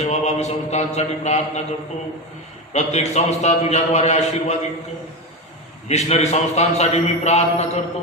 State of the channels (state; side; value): normal; both; correlation 0.17